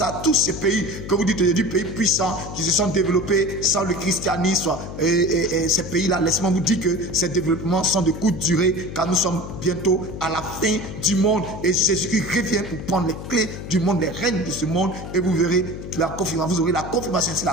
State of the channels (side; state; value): left; noise; hum, 9 dB below the sound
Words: tous ces pays, que vous dites aujourd'hui, pays puissants, qui se sont développés sans le christianisme, et ces pays-là, laissez-moi vous dire que ces développements sont de courte durée, car nous sommes bientôt à la fin du monde et Jésus-Christ revient pour prendre les clés du monde, les règnes de ce monde, et vous verrez la confirmation, vous aurez la confirmation, c'est